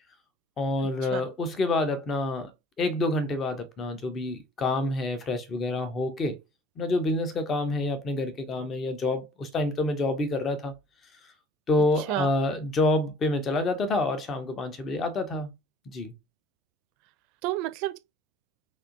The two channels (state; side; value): normal; both; correlation 0.54